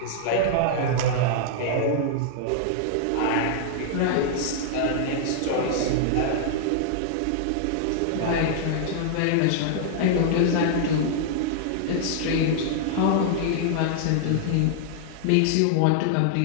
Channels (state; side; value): different; both; correlation -0.01